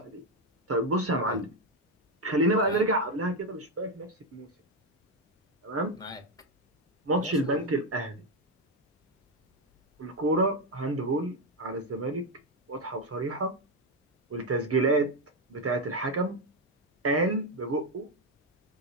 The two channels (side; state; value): both; normal; correlation 0.07